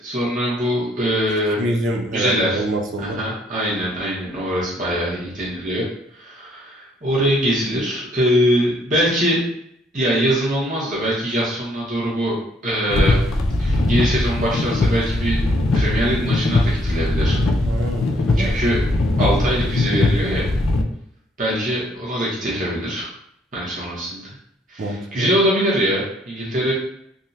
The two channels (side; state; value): both; normal; correlation 0.67